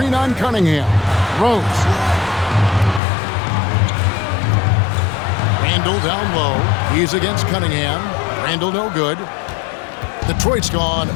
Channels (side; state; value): right; drops out; at 3.0 s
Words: on Cunningham. Rose. Randall down low. He's against Cunningham. Randall no good. Detroit's gone